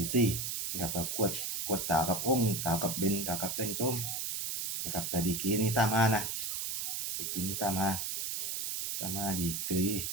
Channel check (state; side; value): noise; right; hiss, 2 dB below the sound